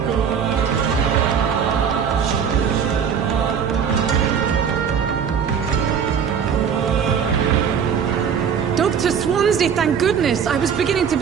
Dr. Swansea, thank goodness. I was beginning to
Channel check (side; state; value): left; quieter; 7.3 dB